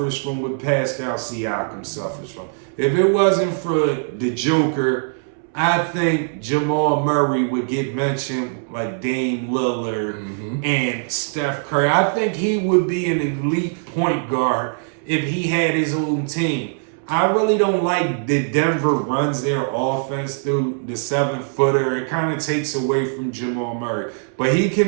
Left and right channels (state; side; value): silent; left; 65 dB below the other